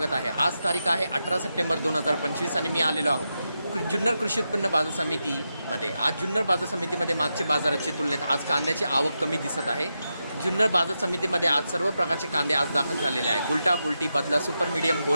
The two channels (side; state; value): both; inverted; correlation -0.88